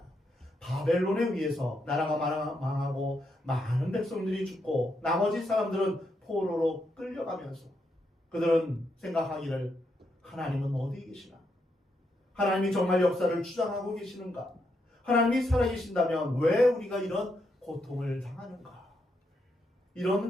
바벨론에 의해서 나라가 망하고 많은 백성들이 죽고 나머지 사람들은 포로로 끌려가면서 그들은 생각하기를 하나님은 어디 계시나? 하나님이 정말 역사를 주장하고 계시는가? 하나님이 살아계신다면 왜 우리가 이런 고통을 당하는가?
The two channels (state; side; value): normal; both; correlation 0.80